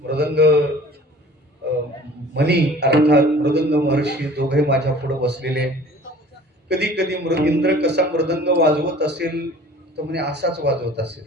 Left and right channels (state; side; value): normal; both; correlation 0.47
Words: मृदंग मनी अर्थात मृदंग महर्षी दोघे माझ्या पुढे बसलेले. कधी कधी इंद्र कसा मृदंग वाजवत असेल तर म्हणे असाच वाजवत असेल